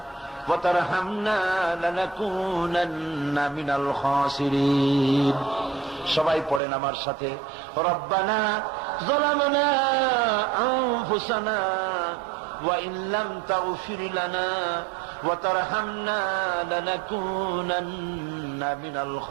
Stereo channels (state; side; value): drops out; left; at 6.6 s